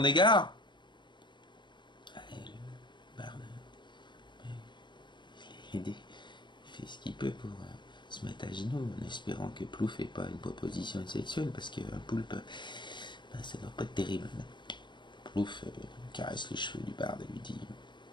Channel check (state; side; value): late; right; 0.22 ms